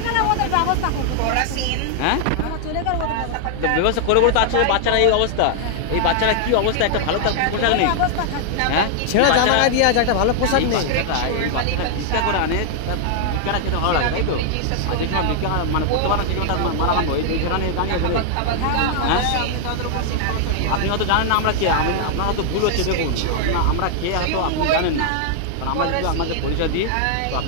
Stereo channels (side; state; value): both; different; correlation 0.00